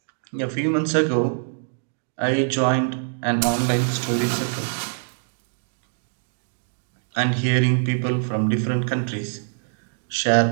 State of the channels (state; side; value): silent; left; digital silence